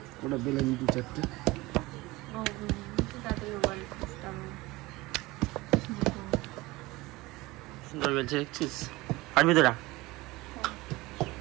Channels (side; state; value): left; quieter; 20.7 dB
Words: ওটা বেলে নিই 2-4টে। সুন্দর বলছে দেখছিস, পারবি তোরা?